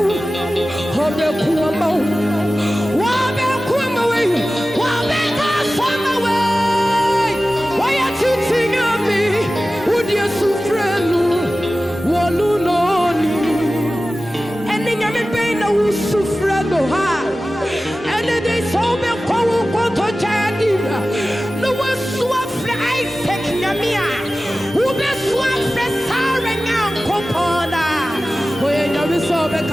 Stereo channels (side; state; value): both; normal; correlation 0.96